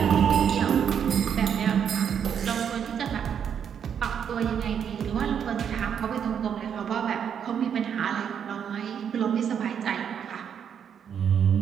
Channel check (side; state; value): left; quieter; 8.0 dB